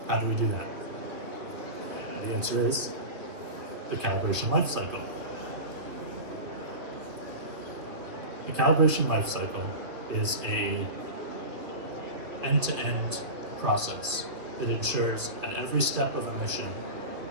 how do we do that? The answer is the calibration life cycle. The calibration life cycle is a end-to-end process that ensures at every step of a mission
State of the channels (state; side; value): late; left; 2.8 ms